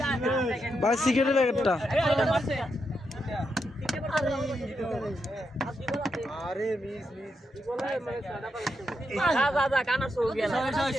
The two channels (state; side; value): normal; both; correlation 0.83